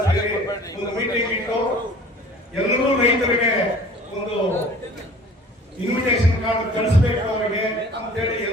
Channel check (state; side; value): normal; both; correlation 0.47